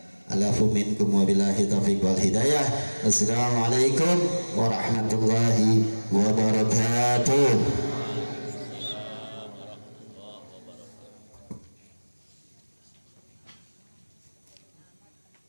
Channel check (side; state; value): both; inverted; correlation -1.00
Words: Alafu minkum wabillahi taufiq wal hidayah. Assalamualaikum warahmatullahi wabarakatuh.